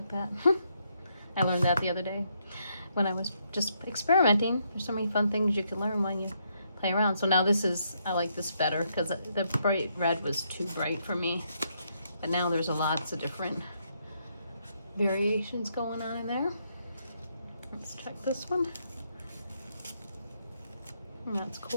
that. I learned that the other day when I was just experimenting. There's so many fun things you can learn when you play around. So now this is, I like this better because the bright red was too bright for me. But now there's lots of different variations going on in there. Let's check this one. And that's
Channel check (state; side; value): inverted; both; correlation -0.76